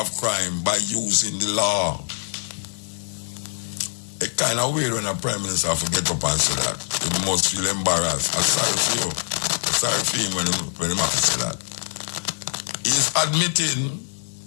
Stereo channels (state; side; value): silent; right; digital silence